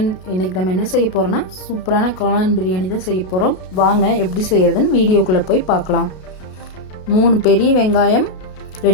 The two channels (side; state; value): right; late; 32 ms